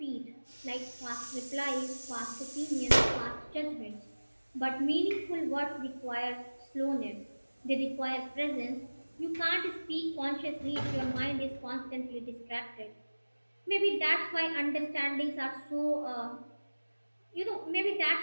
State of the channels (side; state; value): both; inverted; correlation -1.00